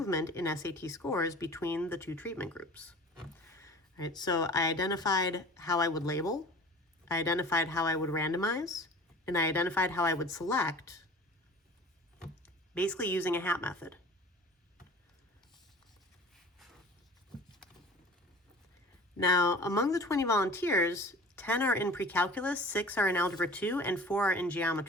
in SAT scores between the two treatment groups. All right, so I identified how I would label, I identified how I would randomize, and I identified how I would select, basically using a hat method. Now, among the 20 volunteers, 10 are in pre-calculus, 6 are in algebra 2, and 4 are in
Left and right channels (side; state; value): both; normal; correlation 0.42